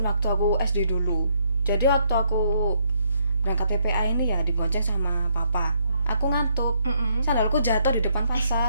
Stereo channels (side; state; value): both; inverted; correlation -0.72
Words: waktu aku SD dulu. Jadi waktu aku berangkat PPA ini ya dibonceng sama papa. Aku ngantuk. Sandalku jatuh di depan